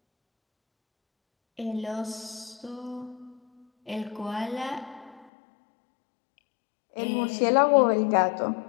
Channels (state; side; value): drops out; right; at 5.2 s